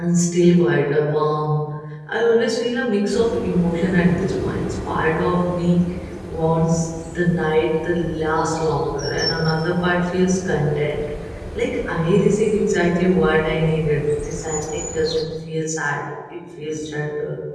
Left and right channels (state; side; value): identical; both; correlation 1.00